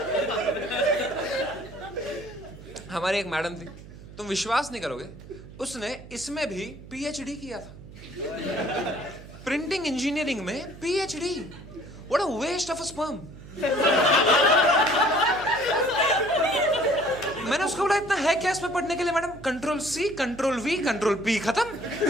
हमारी एक मैडम थी, तुम विश्वास नहीं करोगे, उसने इसमें भी पीएचडी किया था। प्रिंटिंग इंजीनियरिंग में PhD. What a waste of a sperm. मैंने उसको बोला इतना है क्या इसमें पढ़ने के लिए? Madam control C, control V, control P, खत्म।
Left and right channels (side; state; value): right; noise; hum, 17 dB below the sound